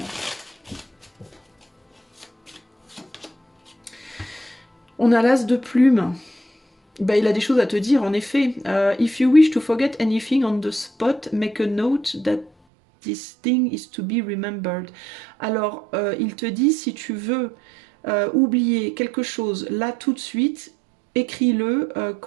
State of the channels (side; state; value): left; drops out; at 12.5 s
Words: On a l'as de plume. bah, il a des choses à te dire, en effet. If you wish to forget anything on the spot, make a note that this thing is to be remembered. Alors, il te dit, si tu veux oublier quelque chose là tout de suite, écris-le